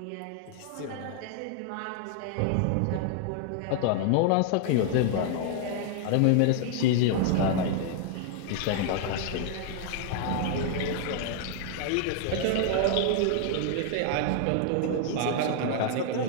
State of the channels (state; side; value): different; both; correlation 0.00